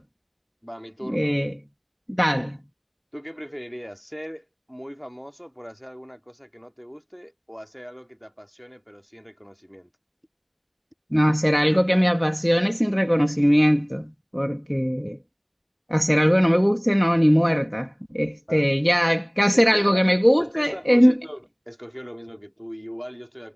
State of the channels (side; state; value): both; identical; correlation 1.00